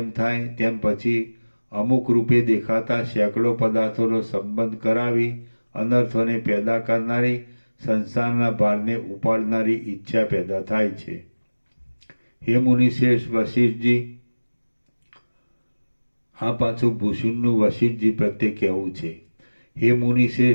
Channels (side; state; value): both; inverted; correlation -1.00